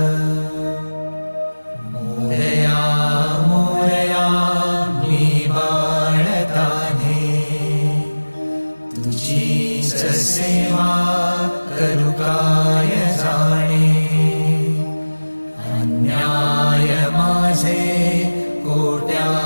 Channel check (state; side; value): inverted; both; correlation -1.00